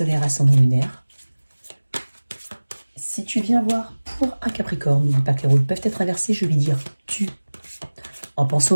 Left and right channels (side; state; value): both; inverted; correlation -1.00